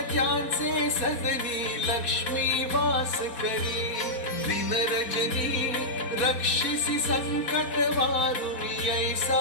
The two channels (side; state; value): right; late; 4.1 ms